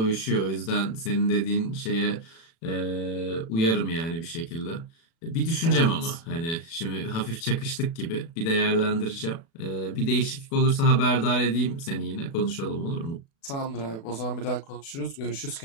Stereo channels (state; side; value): late; right; 36 ms